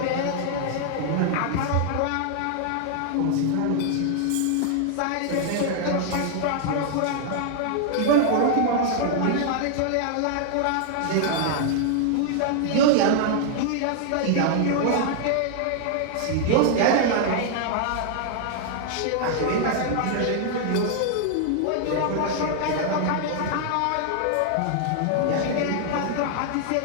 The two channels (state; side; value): different; both; correlation 0.00